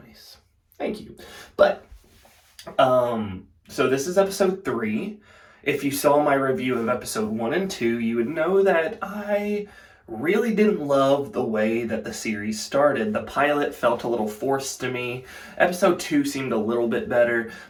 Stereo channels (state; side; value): identical; both; correlation 1.00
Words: nice. Thank you. But so this is episode 3. If you saw my review of episode 1 and 2, you would know that I really didn't love the way that the series started. The pilot felt a little forced to me. Episode 2 seemed a little bit better,